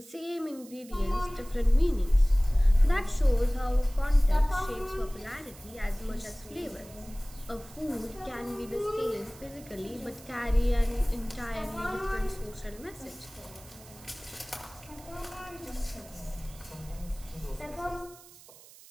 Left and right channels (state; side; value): noise; right; hiss, 21 dB below the sound